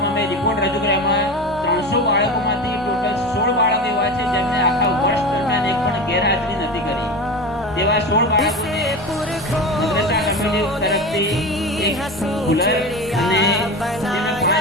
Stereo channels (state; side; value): normal; both; correlation 0.27